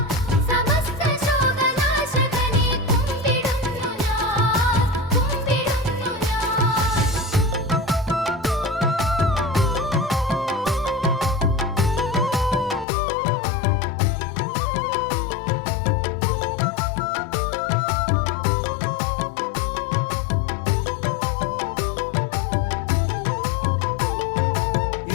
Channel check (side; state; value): right; drops out; at 12.9 s